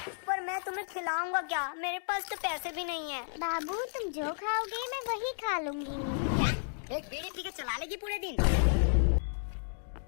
पर मैं तुम्हें खिलाऊंगा क्या? मेरे पास तो पैसे भी नहीं है। बाबू तुम जो खाओगे मैं वही खा लूंगी। एक बीड़ी पी के चला लेगी पूरे दिन?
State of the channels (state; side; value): silent; right; digital silence